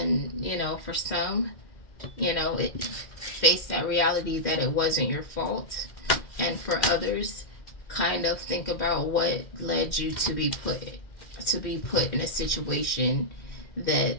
for some, face that reality that it wasn't your fault, and for others, kind of think about what led you to be put in a situation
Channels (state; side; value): late; right; 2.1 ms